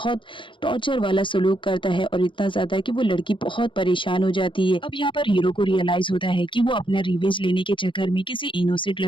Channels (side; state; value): right; late; 0.24 ms